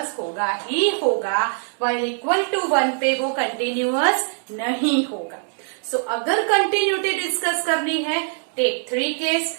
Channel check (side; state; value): left; silent; 64 dB below the other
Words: होगा ही होगा, व्हाइल इक्वल टू 1 पे वो कंटिन्यूअस नहीं होगा। सो अगर कंटिन्यूटी डिस्कस करनी है टेक 3 केस,